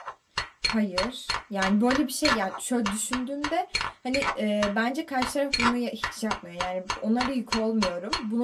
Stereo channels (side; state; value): both; identical; correlation 1.00